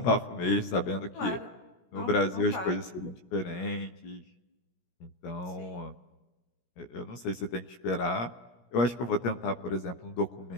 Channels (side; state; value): right; late; 17 ms